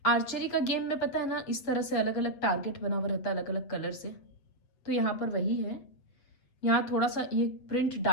आर्चरी का गेम में पता है ना, इस तरह से अलग अलग टारगेट बना हुआ रहता है अलग अलग कलर से। तो यहाँ पर वही है, यहाँ थोड़ा सा ये प्रिंट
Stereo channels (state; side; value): late; right; 7.9 ms